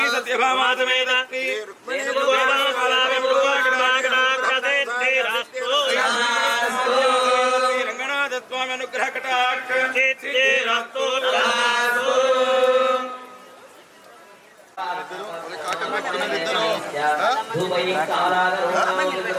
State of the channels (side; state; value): both; identical; correlation 1.00